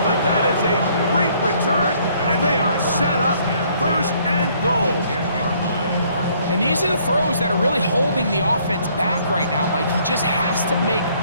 but that is a great return, and they are set up first and goal. And these are the throws that are really holding the offense back right now, Mike. He just has to make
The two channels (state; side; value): inverted; both; correlation -0.64